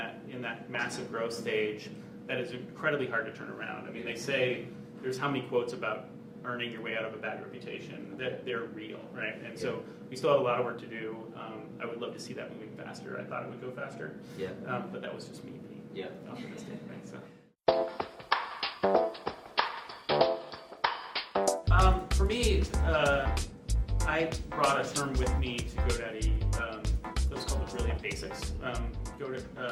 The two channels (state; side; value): identical; both; correlation 1.00